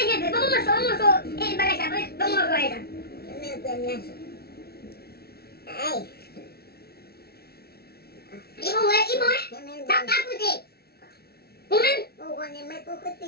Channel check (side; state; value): right; late; 0.45 ms